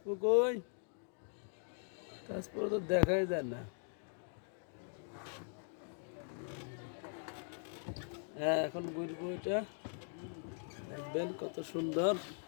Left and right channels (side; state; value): right; silent; 51 dB below the other